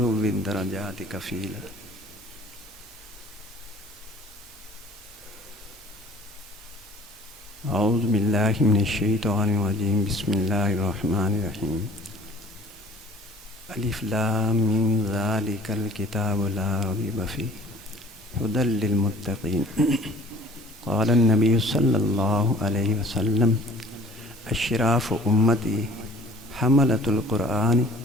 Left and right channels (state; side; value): normal; both; correlation 0.49